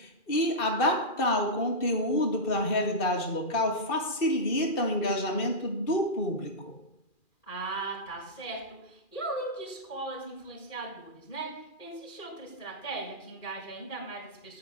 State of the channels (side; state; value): right; late; 2.4 ms